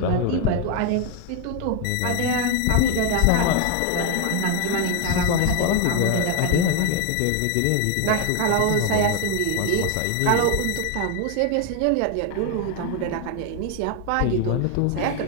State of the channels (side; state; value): both; different; correlation 0.01